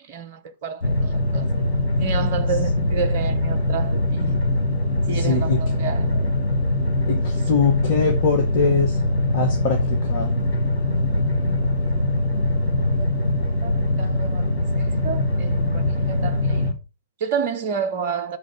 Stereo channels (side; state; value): both; inverted; correlation -0.63